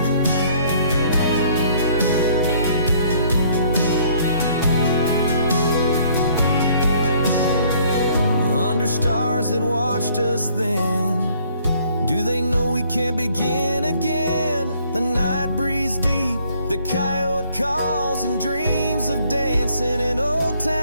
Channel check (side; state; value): both; inverted; correlation -0.61